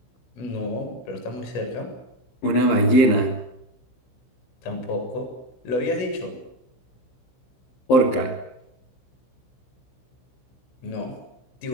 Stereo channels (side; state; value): right; late; 15 ms